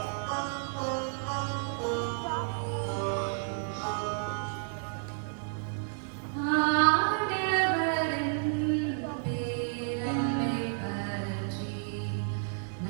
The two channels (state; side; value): silent; left; 57 dB below the other